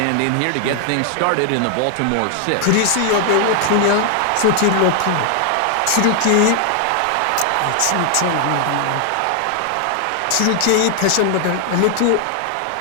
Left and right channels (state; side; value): different; both; correlation 0.00